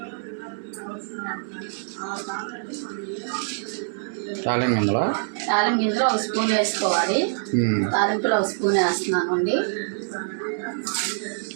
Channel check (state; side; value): silent; left; 61 dB below the other